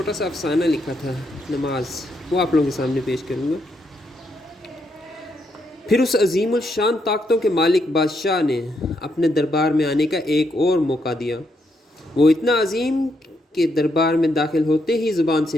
سا افسانہ لکھا تھا، نماز، وہ آپ لوگوں کے سامنے پیش کروں گا۔ پھر اس عظیم الشان طاقتوں کے مالک بادشاہ نے اپنے دربار میں آنے کا ایک اور موقع دیا۔ وہ اتنا عظیم کہ دربار میں داخل ہوتے ہی زبان سے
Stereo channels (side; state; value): both; normal; correlation 0.78